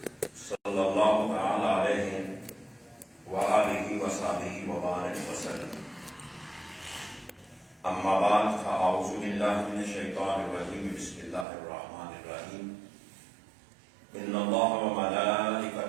صلى الله تعالى عليه وآله وصحبه وبارك وسلم. أما بعد فأعوذ بالله من الشيطان الرجيم. بسم الله الرحمن الرحيم. إن الله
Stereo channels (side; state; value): left; drops out; at 11.5 s